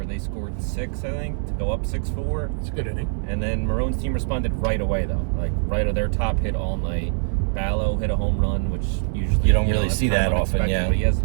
they scored 6, I think, to go up 6-4. It's a good inning. And then Marone's team responded right away, though. Like, right of their top hit all night. Ballo hit a home run, which usually you don't really see that often, yeah. But he has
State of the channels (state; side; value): silent; left; digital silence